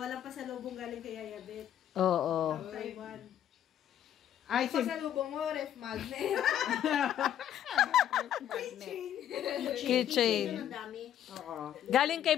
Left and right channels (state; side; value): quieter; right; 10.6 dB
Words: walang pasalubong galing kay Yaya Beth. Oo. Taiwan. Ay, Pasalubong mo, ref magnet. Keychain. Ang dami. Oo. Galing kay